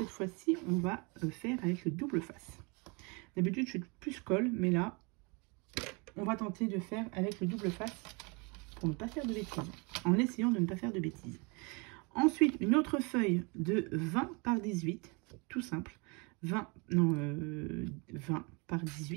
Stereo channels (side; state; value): left; quieter; 30.5 dB